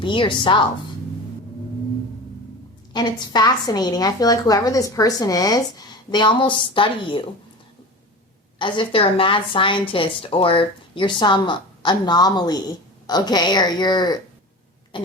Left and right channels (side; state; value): both; normal; correlation 0.32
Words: yourself. And it's fascinating. I feel like whoever this person is, they almost study you as if they're a mad scientist, or you're some anomaly, okay? Or you're